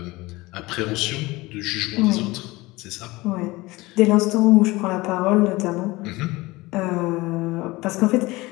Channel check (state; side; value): quieter; right; 21.1 dB